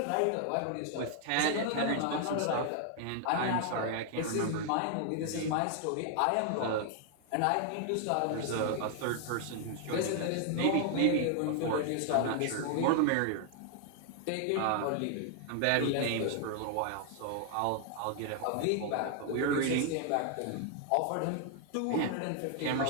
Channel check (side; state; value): both; different; correlation 0.00